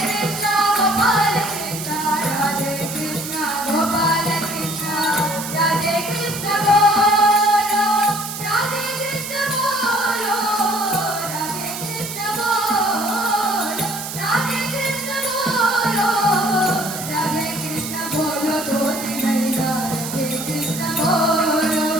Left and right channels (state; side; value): noise; right; hiss, 8 dB below the sound